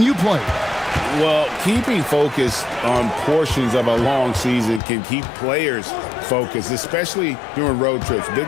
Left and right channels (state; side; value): drops out; right; at 4.8 s